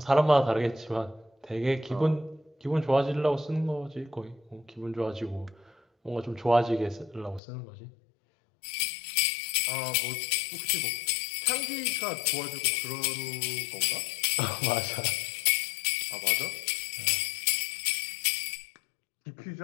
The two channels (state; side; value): drops out; right; at 7.4 s